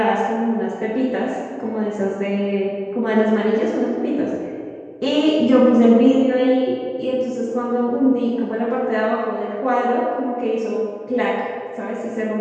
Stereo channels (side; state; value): both; identical; correlation 1.00